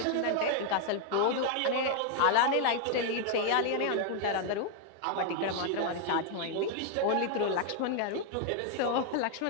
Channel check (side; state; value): both; different; correlation 0.00